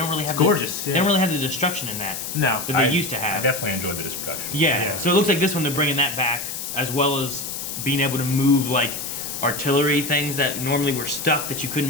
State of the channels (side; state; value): left; noise; hiss, 6 dB below the sound